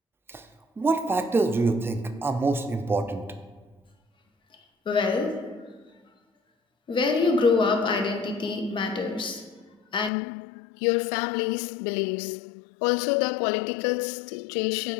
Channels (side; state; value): right; drops out; at 10.1 s